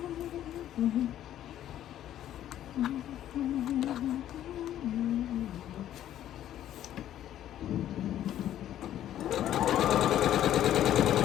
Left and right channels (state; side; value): quieter; right; 11.8 dB